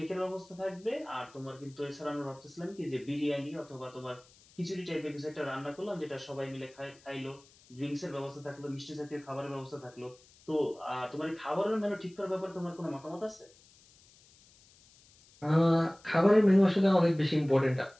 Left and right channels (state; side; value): noise; left; hiss, 27 dB below the sound